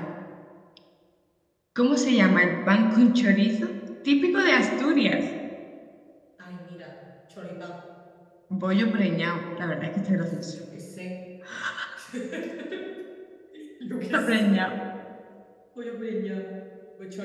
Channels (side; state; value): both; identical; correlation 1.00